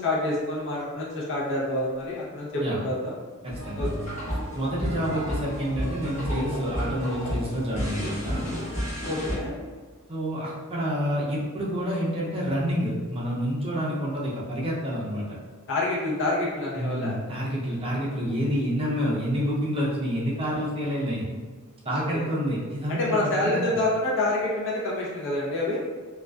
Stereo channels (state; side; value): normal; both; correlation 0.46